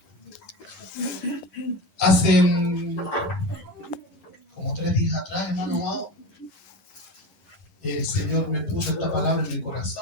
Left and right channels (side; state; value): right; late; 11 ms